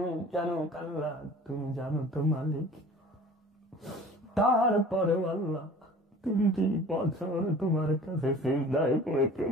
জানো আল্লাহ, তুমি জানো তো মালিক। তারপরেও আল্লাহ 3টি বছর তোমার কাছে সিজদায় পড়ে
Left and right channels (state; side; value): normal; both; correlation 0.45